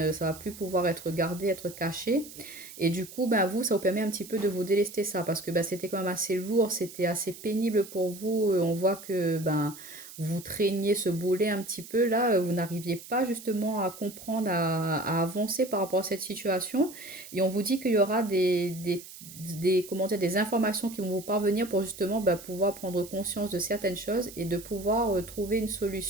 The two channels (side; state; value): right; noise; hiss, 16 dB below the sound